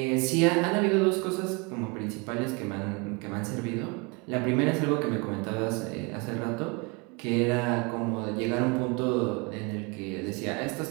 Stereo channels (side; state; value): left; quieter; 29.2 dB